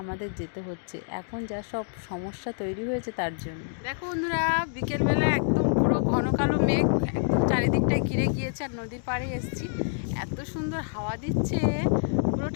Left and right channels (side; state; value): right; silent; digital silence